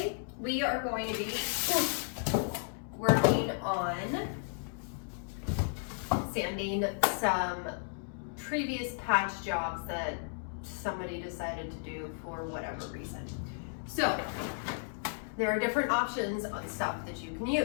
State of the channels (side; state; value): right; silent; digital silence